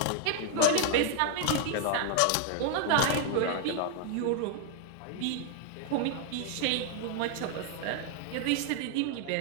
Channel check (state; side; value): different; both; correlation 0.00